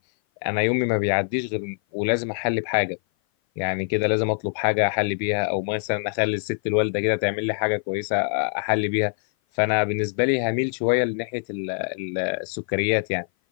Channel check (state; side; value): silent; right; 56 dB below the other